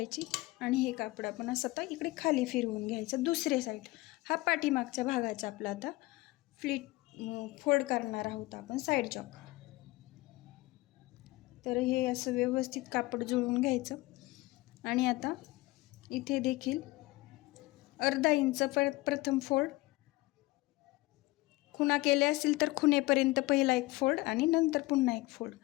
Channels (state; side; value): quieter; right; 20.5 dB